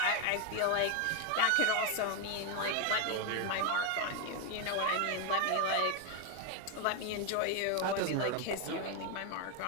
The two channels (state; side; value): different; both; correlation 0.01